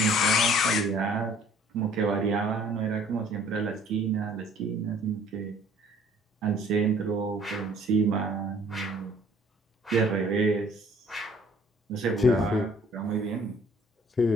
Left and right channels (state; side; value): normal; both; correlation 0.56